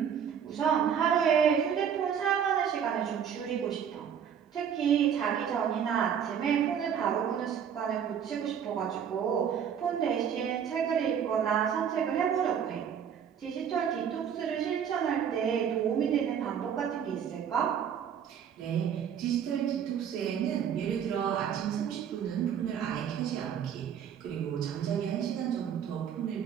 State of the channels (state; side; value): quieter; left; 8.2 dB